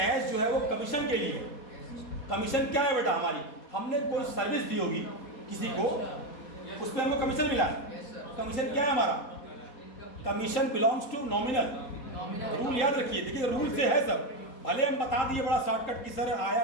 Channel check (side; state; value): right; late; 4.2 ms